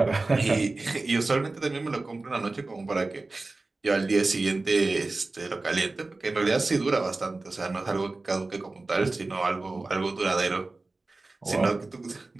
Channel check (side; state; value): left; quieter; 3.3 dB